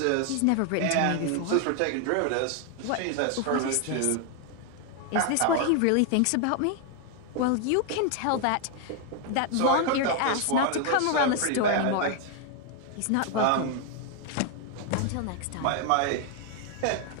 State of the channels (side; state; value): both; different; correlation 0.00